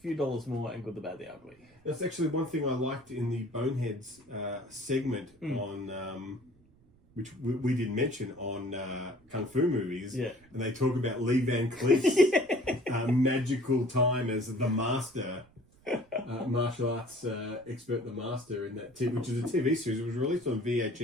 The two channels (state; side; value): noise; right; rumble, 29 dB below the sound